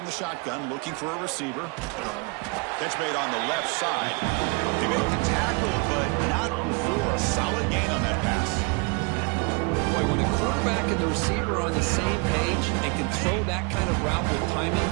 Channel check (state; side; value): quieter; left; 31.5 dB